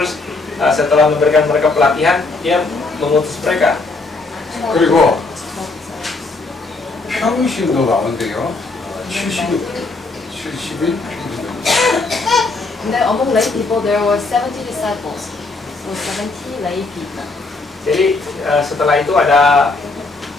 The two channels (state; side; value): quieter; right; 3.5 dB